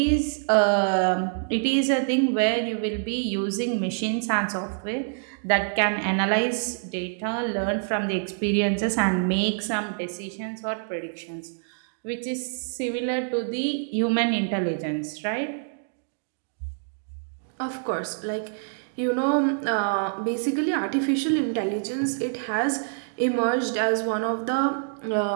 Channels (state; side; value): silent; left; digital silence